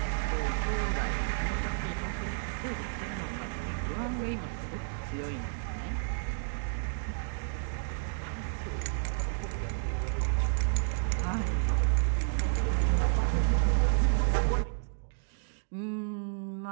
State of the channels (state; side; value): silent; left; digital silence